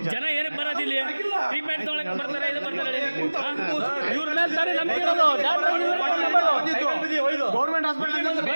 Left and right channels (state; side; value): inverted; both; correlation -1.00